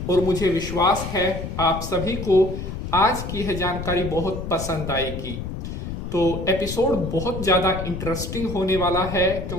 और मुझे विश्वास है आप सभी को आज की यह जानकारी बहुत पसंद आएगी। तो एपिसोड बहुत ज़्यादा इंटरेस्टिंग होने वाला है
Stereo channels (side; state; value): left; noise; rumble, 6 dB below the sound